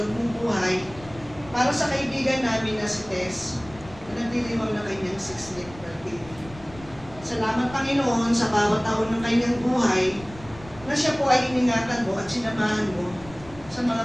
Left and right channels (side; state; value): left; noise; rumble, 19 dB below the sound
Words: mong buhay, para sa kaibigan namin na si Tess, na nagdiriwang ng kanyang 6th birthday. Salamat, Panginoon, sa bawat taon ng kanyang buhay, na siya po ay iningatan mo at sinamahan mo sa